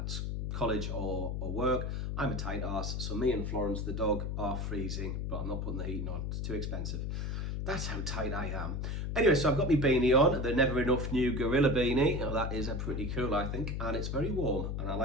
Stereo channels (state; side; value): noise; left; hum, 2 dB below the sound